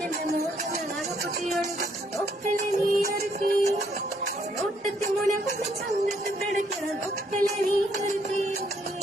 മോഹങ്ങൾ അകപ്പൊട്ടിയൊഴുകും ഒക്കലെ നീ ഇറക്കി നോട്ടത്തി മുന കൊണ്ട് ചങ്കത്ത് പിടയ്ക്കണം ഒക്കലെ നീ ഇറക്കി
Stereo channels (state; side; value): normal; both; correlation 0.70